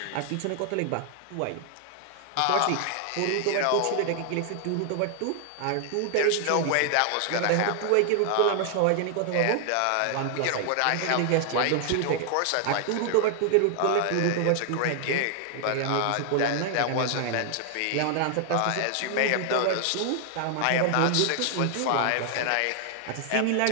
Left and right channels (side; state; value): both; different; correlation 0.00